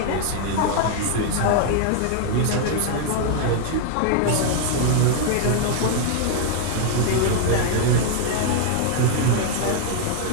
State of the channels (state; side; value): different; both; correlation 0.00